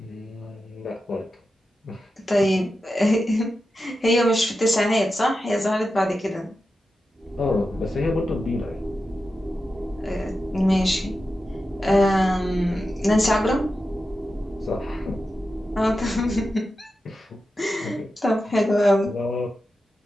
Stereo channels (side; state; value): both; normal; correlation 0.91